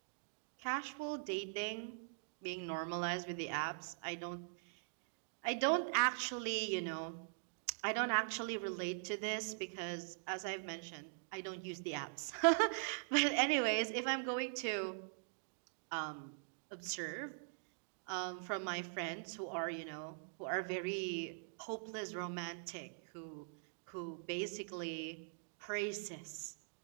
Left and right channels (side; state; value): left; silent; digital silence